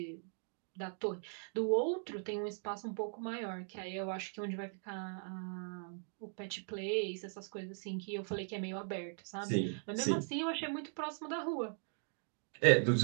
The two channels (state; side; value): silent; left; 52 dB below the other